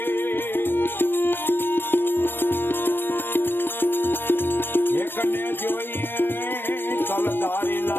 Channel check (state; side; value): late; right; 0.098 ms